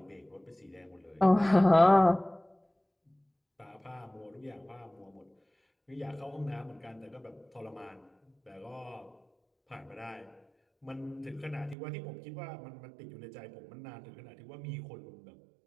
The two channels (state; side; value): drops out; left; at 11.8 s